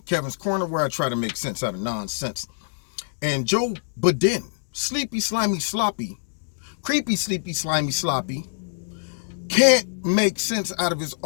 Kevin's Corner, where I try to make sense out of nonsense. And Joe Biden, sleepy, slimy, sloppy, creepy, sleepy, slimy, sloppy, can't make sense out of his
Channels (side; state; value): right; silent; digital silence